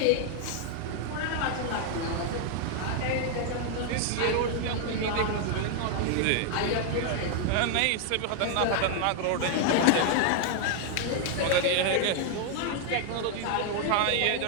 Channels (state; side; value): different; both; correlation 0.00